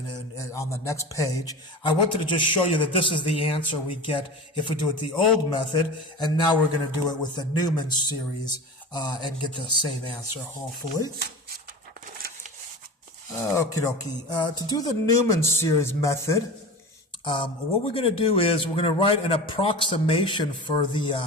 the next page. I wanted to just show you that this is the answer we get if we do it the old method, and now we're going to do it with the Newman series and get the same answer, hopefully. Okie dokie. To do the Newman series method, what we're going to do is we're going to write an approximation for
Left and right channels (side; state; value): both; normal; correlation 0.31